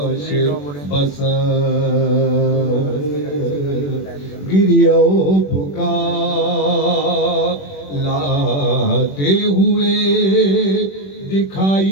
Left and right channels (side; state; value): right; late; 21 ms